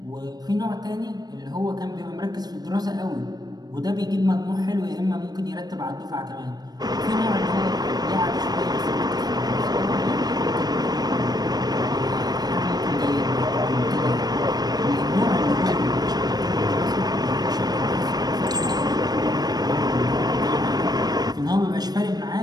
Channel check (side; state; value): left; late; 0.19 ms